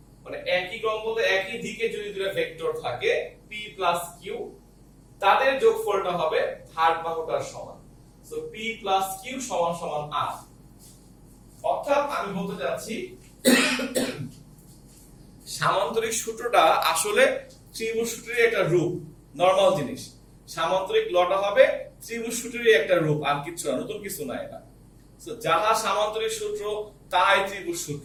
মানে একই ক্রম বলতে একই দিকে যদি দুটো ভেক্টর থাকে p প্লাস q, তাদের যোগফলটা হবে থার্ড বাহুটার সমান। সো p প্লাস q সমান সমান r। অর্থাৎ আমি বলতে যাচ্ছি সামান্তরিক সূত্রটা আসলে ত্রিভুজ সূত্রের একটা রূপ, নরমাল জিনিস। সামান্তরিক লটা হবে ত্রিভুজ সূত্রের একটা রূপ, আর কিছু না, নতুন কিছু না এটা। সো যাহা সামান্তরিক সূত্র তাই ত্রিভুজ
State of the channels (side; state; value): both; identical; correlation 1.00